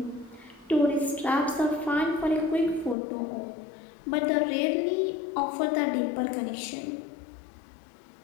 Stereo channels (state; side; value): drops out; right; at 3.0 s